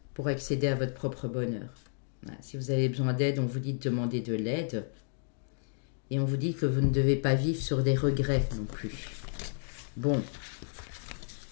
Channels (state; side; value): silent; right; digital silence